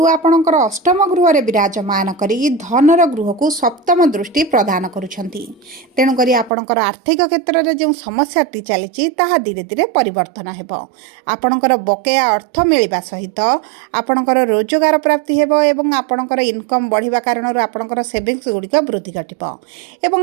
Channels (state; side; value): drops out; left; at 6.5 s